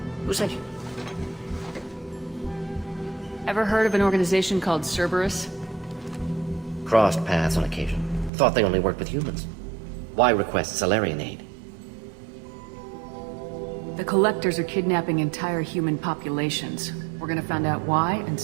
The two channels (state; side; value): drops out; left; at 8.3 s